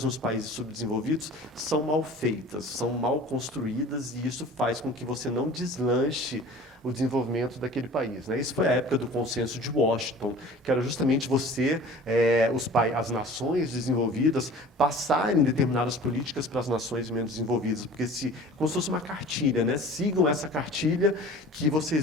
nos países subdesenvolvidos são mal feitas, são mal construídas, e isso faz com que você não deslanche o desenvolvimento daquele país. Né? Isso foi a época do consenso de Washington, que era justamente as nações desenvolvidas passarem determinadas políticas para as nações menos desenvolvidas, porque como se fosse uma cartilha, né? Sigam essa cartilha que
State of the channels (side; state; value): both; normal; correlation 0.43